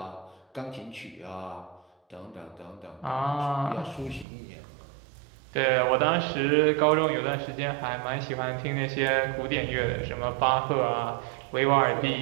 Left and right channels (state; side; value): drops out; left; at 4.2 s